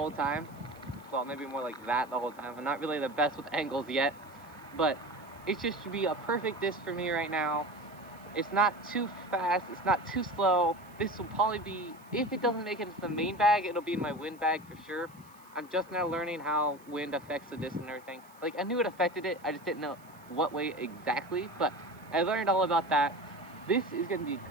time. Well, maybe more like that the whole time. I'm not really the best with angles yet, but it just should be a perfect disc for me right now. It's not too fast, it's not too slow. This will probably be, if it doesn't make it into the main bag, it'll be in my wind bag for sure. I'm just now learning how wind affects the disc and everything. Like, I knew it affected it, I just didn't know what way exactly, but I learned all about that. This is going to be a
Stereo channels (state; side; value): noise; right; hiss, 27 dB below the sound